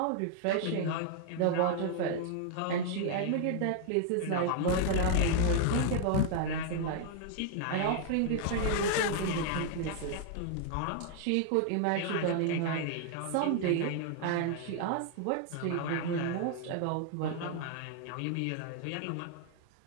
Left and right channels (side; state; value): both; different; correlation 0.00